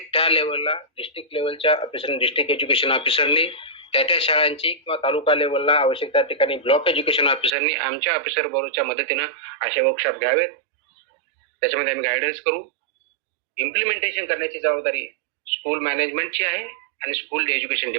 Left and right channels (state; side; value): drops out; left; at 7.6 s